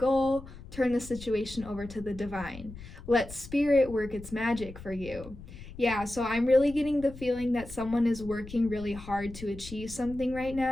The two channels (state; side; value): noise; left; rumble, 15 dB below the sound